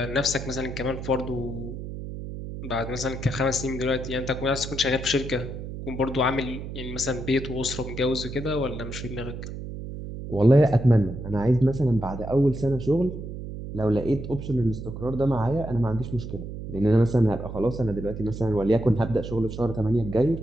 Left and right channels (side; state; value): right; noise; hum, 8 dB below the sound